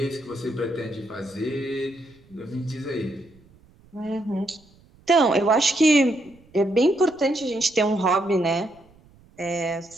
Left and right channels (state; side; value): noise; right; rumble, 28 dB below the sound